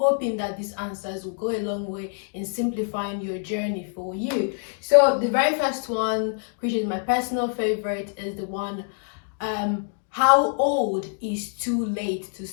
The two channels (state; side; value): silent; right; 61 dB below the other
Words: that these answers will go a long way in simplifying your journey for you. So the very first one, which is my personal favorite, is the one, how old is too late to